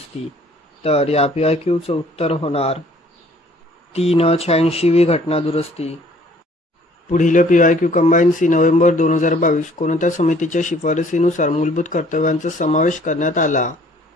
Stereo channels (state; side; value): normal; both; correlation 0.57